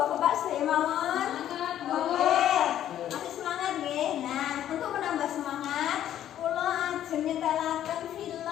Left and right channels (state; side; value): quieter; right; 11.3 dB